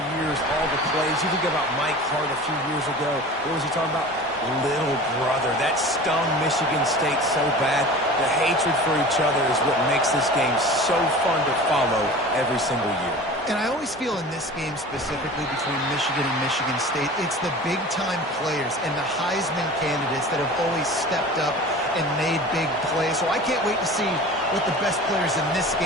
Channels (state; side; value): normal; both; correlation 0.38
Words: years, all the plays. You think about Mike Hart a few years ago. What was he talking about? Little brother. That stung Michigan State so bad. The hatred for each other is what makes this game so fun to follow every single year. And I always feel in this game specifically between Michigan and Michigan State, it's the big-time players and the Heisman candidates that have always stepped up and made big plays. So I can't wait to see what the best players in this